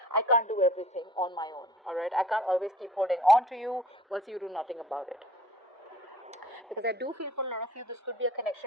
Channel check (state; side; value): normal; both; correlation 0.49